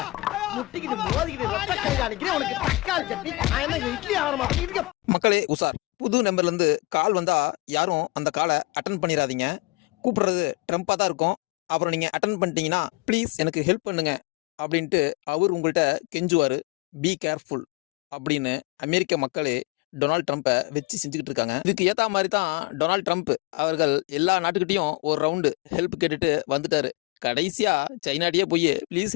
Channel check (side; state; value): right; quieter; 22.2 dB